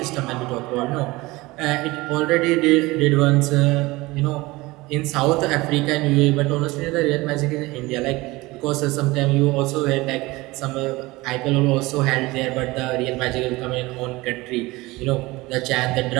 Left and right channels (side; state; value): left; quieter; 21.2 dB